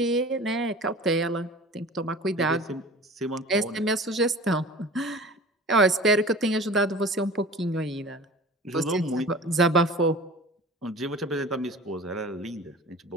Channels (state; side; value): normal; both; correlation 0.40